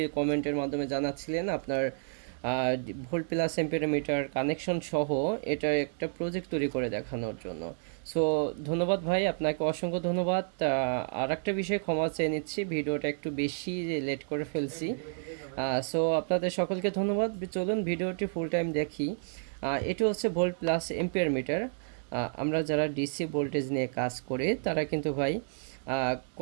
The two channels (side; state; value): left; silent; digital silence